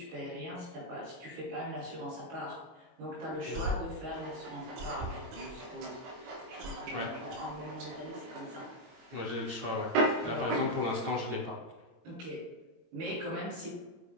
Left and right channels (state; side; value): late; left; 22 ms